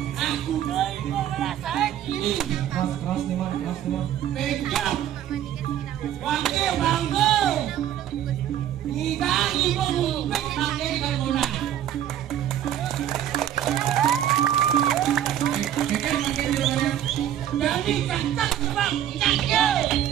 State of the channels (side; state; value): left; quieter; 11.1 dB